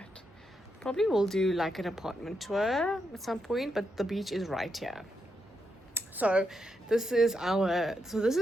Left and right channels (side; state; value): both; normal; correlation 0.83